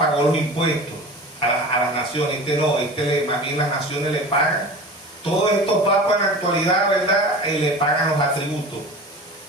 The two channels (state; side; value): normal; both; correlation 0.35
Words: los impuestos a las naciones. Más bien las naciones le pagan. Todos estos papas en la actualidad, ¿verdad? Le pagan los atributos.